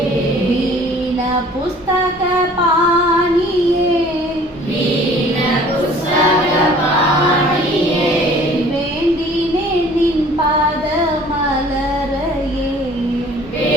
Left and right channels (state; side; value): normal; both; correlation 0.51